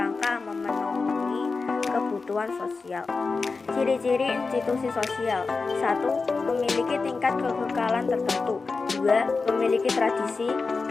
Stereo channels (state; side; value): quieter; right; 4.2 dB